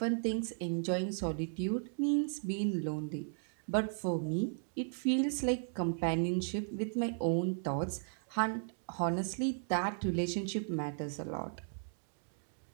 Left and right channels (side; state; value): left; silent; digital silence